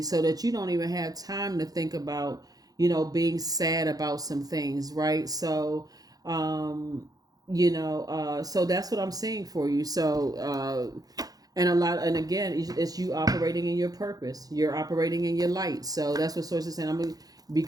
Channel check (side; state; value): left; late; 0.18 ms